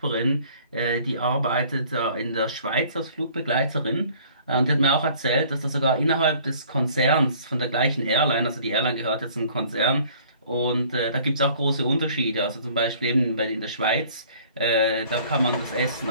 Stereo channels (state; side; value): inverted; both; correlation -0.54